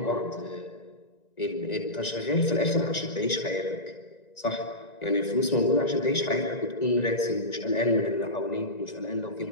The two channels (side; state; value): right; late; 1.9 ms